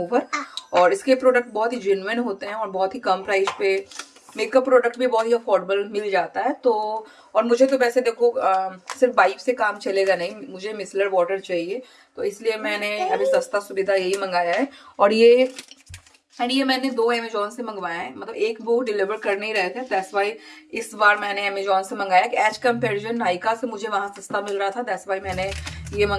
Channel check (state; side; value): identical; both; correlation 1.00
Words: और इसके प्रोडक्ट बहुत ही जेन्युइन होते हैं और बहुत ही कम प्राइस पे मेकअप प्रोडक्ट भी बहुत ही अफोर्डेबल मिल जाता है। तो और मुझे तो वैसे देखो सिर्फ वाइप से काम चलेगा नहीं, मुझे मिसलर वाटर चाहिए, तो इसलिए मैंने अभी सस्ता सुविधा यही मंगाया है। और ये मैंने 2 अमेजोन से मंगवाया है, मतलब एक वो डिलीवर कर नहीं रहे थे, दैट्स वाई इस बार मैंने अमेजोन से मंगाया कि एज कंपेरिजन नायका से मुझे वहां सस्ता मिल रहा था, दैट्स वाई मैंने ये